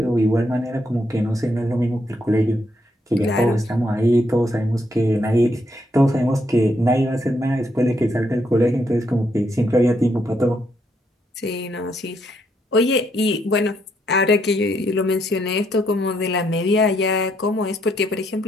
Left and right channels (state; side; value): normal; both; correlation 0.75